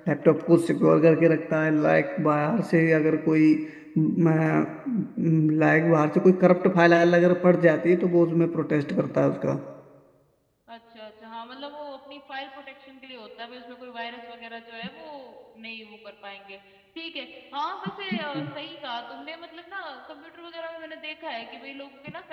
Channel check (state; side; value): identical; both; correlation 1.00